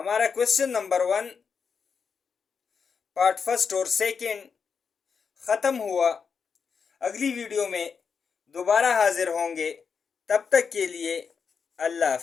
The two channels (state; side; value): quieter; right; 6.0 dB